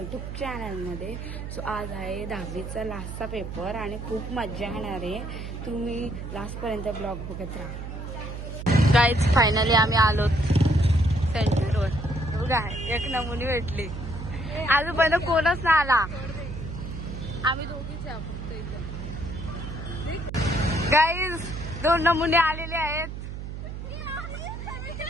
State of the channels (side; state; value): right; noise; hum, 8 dB below the sound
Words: चॅनलमध्ये. सो आज आहे 10वीचा लास्टचा पेपर आणि खूप मजा येणार आहे. तुम्ही लास्टपर्यंत ब्लॉग बघत राहा. गाईज फायनली आम्ही आलो सेंटरवर. बघा एक नमुनी भेटली. आजूबाजूला कोणच ना आला. आम्ही दोघीच आहे फक्त इथं. गाईज 2 नमुने आलेले आहेत.